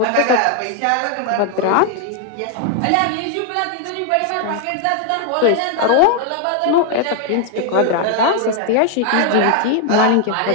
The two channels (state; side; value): different; both; correlation 0.00